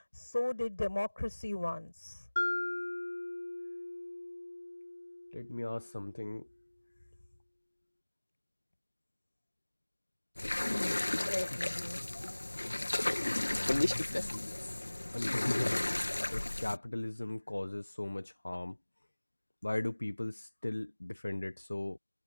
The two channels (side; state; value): both; inverted; correlation -1.00